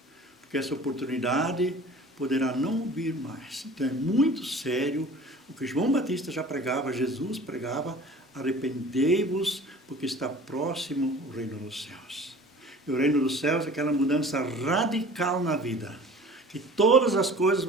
Porque essa oportunidade poderá não vir mais. Então é muito sério o que João Batista já pregava, Jesus pregava, arrependei-vos, porque está próximo o reino dos céus. E o reino dos céus é aquela mudança radical na vida, que todas as coisas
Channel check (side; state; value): both; normal; correlation 0.44